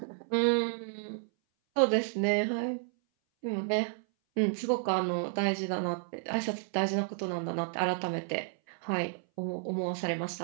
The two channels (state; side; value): silent; left; 57 dB below the other